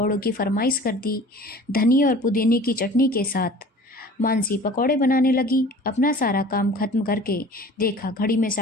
की फरमाइश कर दी, धनिया और पुदीने की चटनी के साथ। मानसी पकौड़े बनाने लगी। अपना सारा काम खत्म करके देखा घड़ी में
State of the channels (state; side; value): normal; both; correlation 0.44